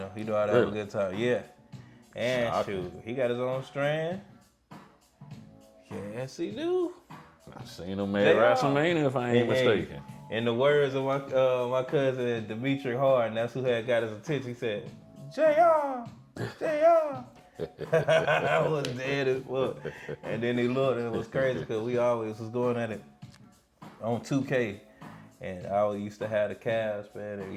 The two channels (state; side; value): identical; both; correlation 1.00